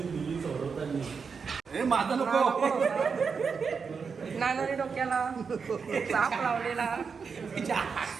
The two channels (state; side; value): quieter; left; 5.6 dB